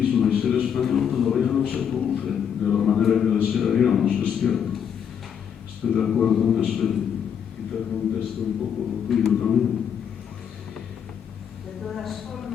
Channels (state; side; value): quieter; right; 8.1 dB